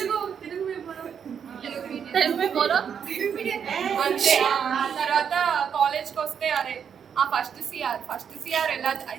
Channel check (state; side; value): quieter; left; 7.6 dB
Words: అంతే. తర్వాత కాలేజ్కి వస్తే అరే ఆ ఫస్ట్ సిఆర్ ఎలా